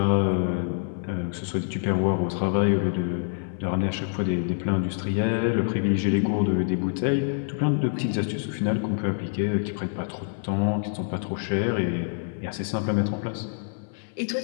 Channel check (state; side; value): silent; right; 61 dB below the other